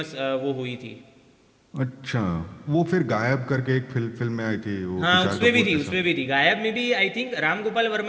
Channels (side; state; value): both; identical; correlation 1.00